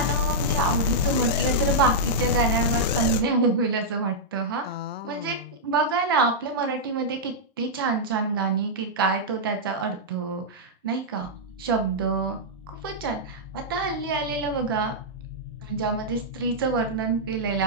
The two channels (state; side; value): normal; both; correlation -0.08